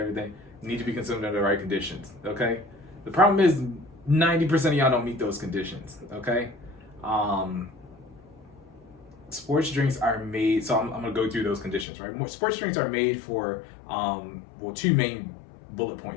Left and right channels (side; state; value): right; drops out; at 11.9 s